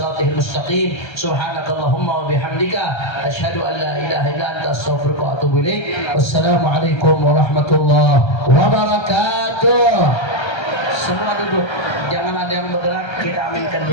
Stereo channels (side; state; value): right; late; 1.3 ms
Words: mustaqim. Subhanakallahumma wa bihamdika asyhadu an la ilaha illa anta astaghfiruka wa atubu ilaik. Wassalamualaikum warahmatullahi wabarakatuh. Semua duduk, jangan ada yang bergerak. Kita aminkan